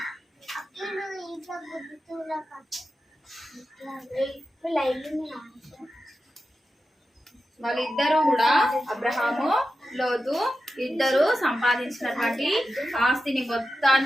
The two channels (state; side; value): normal; both; correlation 0.91